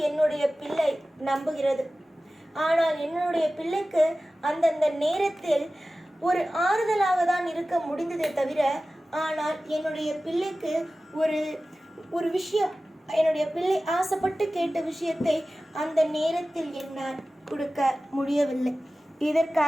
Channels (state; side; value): normal; both; correlation 0.96